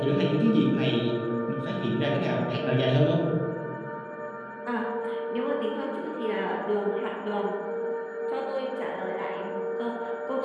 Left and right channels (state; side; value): identical; both; correlation 1.00